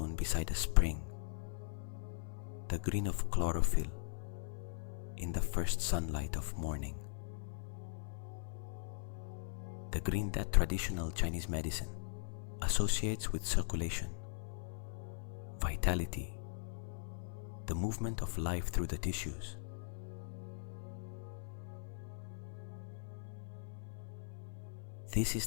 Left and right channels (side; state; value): right; silent; 51 dB below the other